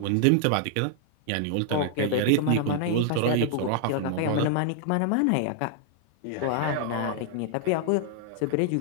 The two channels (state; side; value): different; both; correlation -0.01